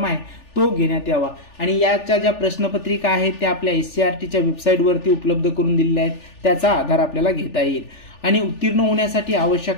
आहे तो घेण्यात यावा आणि याच्या ज्या प्रश्नपत्रिका आहेत त्या आपल्या SCERTच्या वेबसाईटवरती उपलब्ध करून दिलेल्या आहेत, त्याचा आधार आपल्याला घेता येईल. आणि उत्तीर्ण होण्यासाठी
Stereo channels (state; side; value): late; right; 3.4 ms